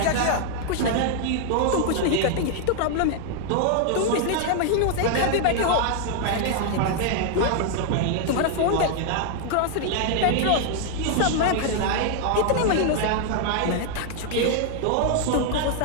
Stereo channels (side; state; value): both; different; correlation 0.00